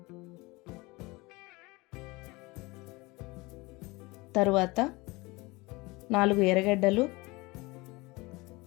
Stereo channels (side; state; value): right; quieter; 23.5 dB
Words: తరువాత 4 ఎర్రగడ్డలు,